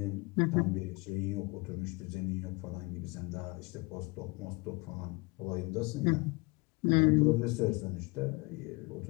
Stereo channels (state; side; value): quieter; right; 26.9 dB